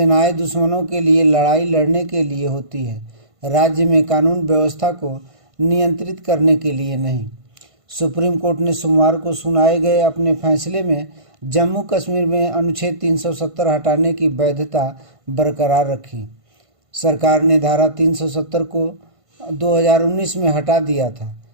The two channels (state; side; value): late; left; 1.5 ms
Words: दुश्मनों के लिए लड़ाई लड़ने के लिए होती है, राज्य में कानून व्यवस्था को नियंत्रित करने के लिए नहीं। सुप्रीम कोर्ट ने सोमवार को सुनाए गए अपने फैसले में जम्मू कश्मीर में अनुच्छेद 370 हटाने की वैधता बरकरार रखी। सरकार ने धारा 370 को 2019 में हटा दिया था।